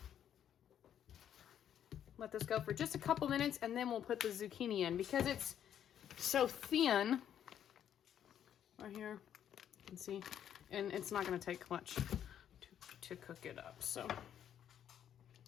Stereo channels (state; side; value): quieter; right; 9.8 dB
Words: Let this go for just a couple minutes and then we'll put the zucchini in because it's so thin. Right here, you can see, and it's not gonna take much to cook it up, so.